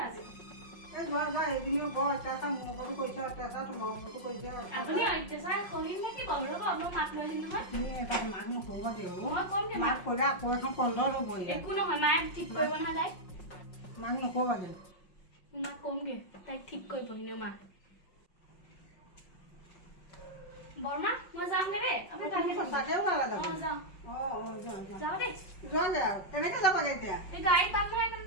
এই ঘৰত যা সেইখিনিও বৰ অত্যাচাৰ মোৰ ওপৰতো কৰিছে অত্যাচাৰ তোমাৰ ওপৰতো কৰিছে আপুনি অত্যাচাৰ কৰিম নেকি বাৰু ৰ'ব মই মাক লৈ আহিম নহয় তুমি এটা মাক নকৰিবা দেউ মই কম দে মাক ক'লে আকৌ এখন কন্দল হ'ব একো নহয় মায়ে ঠিক কৰিব নহয় তাইক মাক নকৰিবা দেউ মাক কমগে তাইক ঠিক কৰিব এনেও মা বৰমা মই যামগে দেই আপুনি তুমি সঁচাকে ওলালে যাব যাওঁ যোৱা যাওঁ দেই যোৱাগে আৰু কেনেকে যাবাগে এতিয়া এই গাড়ী পাম নহয়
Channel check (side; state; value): right; late; 5.5 ms